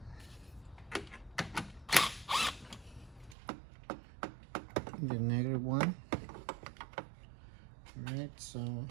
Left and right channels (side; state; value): left; drops out; at 3.4 s